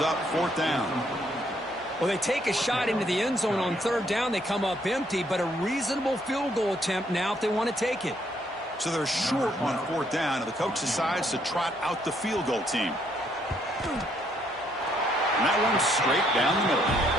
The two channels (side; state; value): both; normal; correlation 0.70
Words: up 4th down. Well, they take a shot into the end zone on 3rd down. They come up empty, but a reasonable field goal attempt now if they want to take it. So they're short on 4th down, and the coach decides to trot out the field goal team. And that one's straight down the middle.